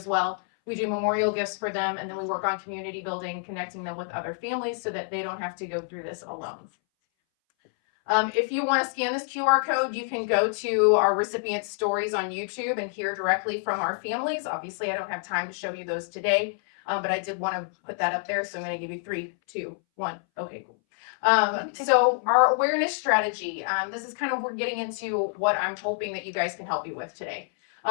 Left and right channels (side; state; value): right; silent; 60 dB below the other